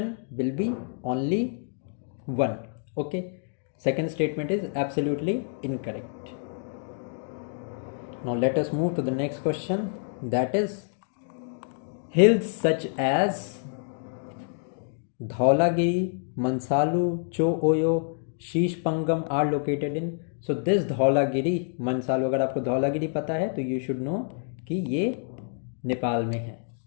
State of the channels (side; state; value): right; silent; digital silence